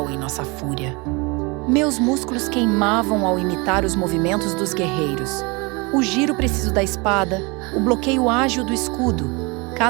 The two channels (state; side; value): quieter; left; 27.8 dB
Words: em nossa fúria. Meus músculos queimavam ao imitar os movimentos dos guerreiros. O giro preciso da espada, o bloqueio ágil do escudo,